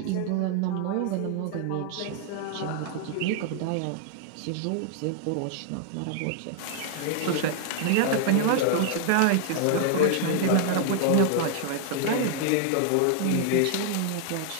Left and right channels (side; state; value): both; different; correlation 0.00